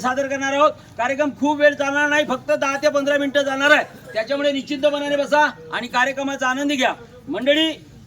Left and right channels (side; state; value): both; identical; correlation 1.00